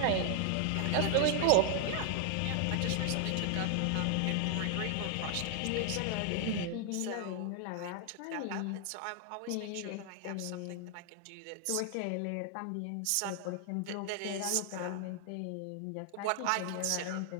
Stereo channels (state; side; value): different; both; correlation 0.00